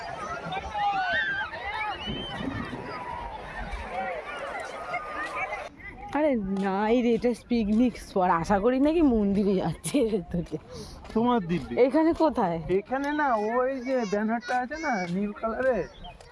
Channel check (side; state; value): both; identical; correlation 1.00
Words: আরে নাই রে, এটা পিকনিক স্পট। আশা করি নাকি মন্দিরে যাচ্ছে তোকে। তোমার দিব্যি এখানে কোথায়? এখানে না, ওই যে ব্যানারটা আছে না নীল কালারের,